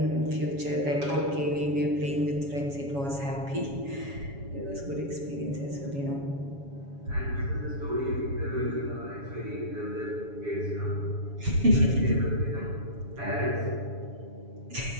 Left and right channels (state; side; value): late; left; 7.1 ms